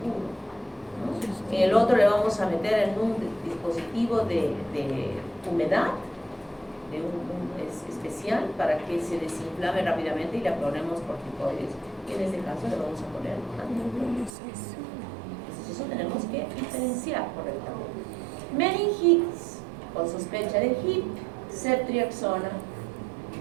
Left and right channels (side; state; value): left; drops out; at 14.3 s